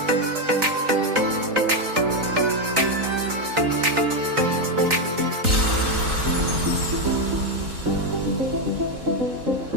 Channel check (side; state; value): left; late; 3.9 ms